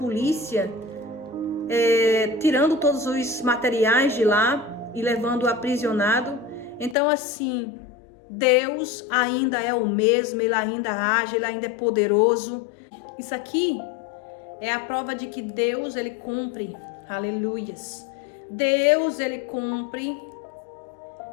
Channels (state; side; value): drops out; right; at 7.0 s